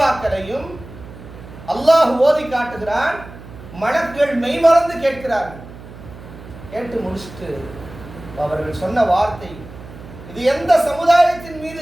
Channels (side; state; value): right; noise; hum, 16 dB below the sound